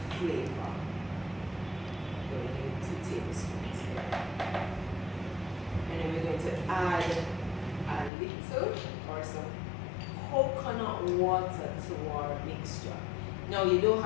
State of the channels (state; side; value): drops out; right; at 8.1 s